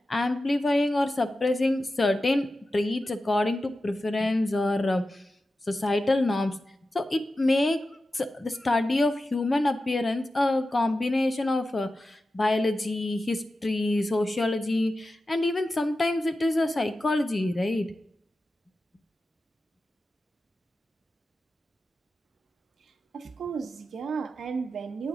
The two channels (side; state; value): both; normal; correlation 0.92